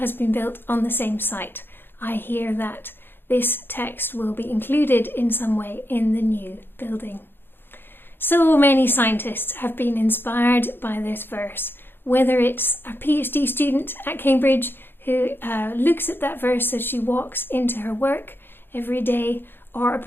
been built on the same site, I hear that this text will be included in some way in the new building. So many scientists have been inspired by this verse, whether it's a PhD student at Cambridge who looks at that verse as she walks into her work every day, or a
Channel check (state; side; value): late; right; 0.10 ms